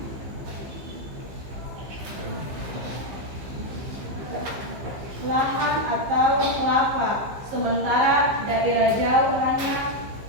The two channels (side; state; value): left; late; 15 ms